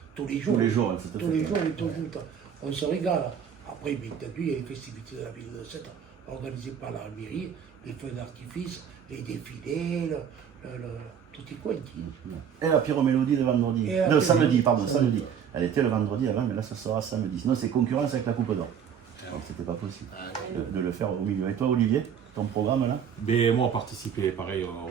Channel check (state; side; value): quieter; left; 7.9 dB